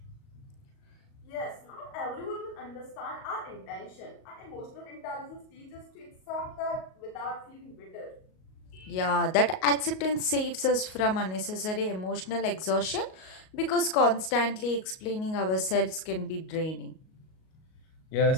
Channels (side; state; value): right; late; 38 ms